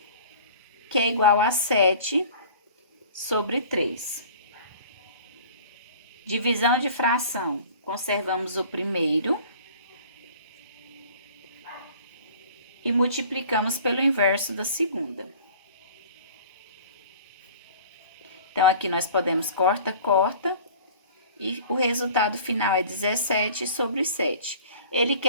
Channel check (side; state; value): both; inverted; correlation -0.45